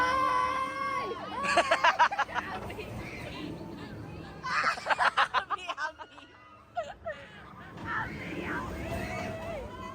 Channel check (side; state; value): both; identical; correlation 1.00